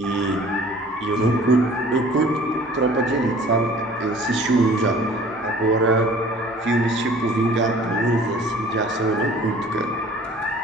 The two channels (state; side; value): normal; both; correlation 0.49